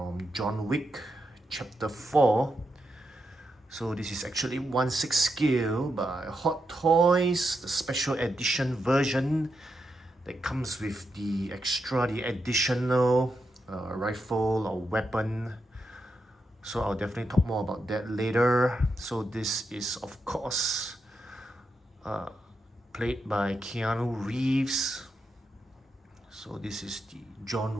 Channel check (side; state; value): both; normal; correlation 0.85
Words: John Wick Chapter 4. So this is actually 1/6 scale by Hot Toys, the special edition version that comes with the additional rifle or weapon. So I'll definitely talk more about that later. So this is of course played by Keanu Reeves. So this is the